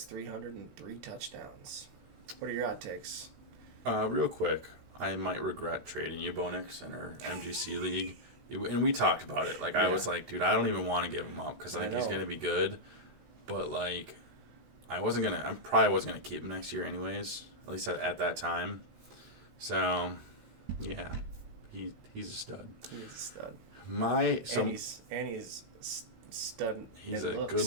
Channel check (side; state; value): left; late; 16 ms